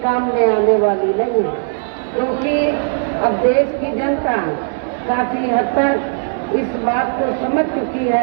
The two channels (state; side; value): silent; left; digital silence